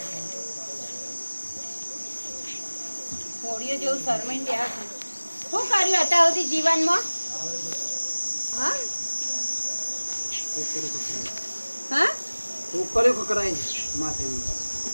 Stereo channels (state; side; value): inverted; both; correlation -1.00